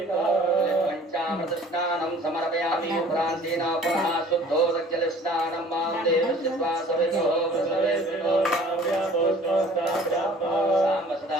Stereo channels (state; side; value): normal; both; correlation 0.50